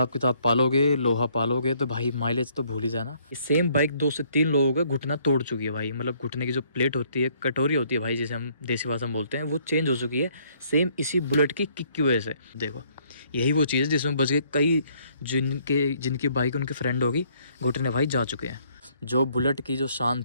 किताब पालोगे, लोहा पालोगे, तो भाई माइलेज तो भूल ही जाना। सेम बाइक 2 से 3 लोगों का घुटना तोड़ चुकी है भाई। मतलब घुटने की जो प्लेट होती है, कटोरी होती है भाई, जिसे हम देसी भाषा में बोलते हैं, वो चेंज हो चुकी है सेम इसी बुलेट की किक की वजह से। देखो यही वो चीज़ है जिसमें बच गए कई जिनकी बाइक उनके फ्रेंड होगी, घुटने भाई जा चुके हैं। जो बुलेट की जो शान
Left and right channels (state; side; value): inverted; both; correlation -0.65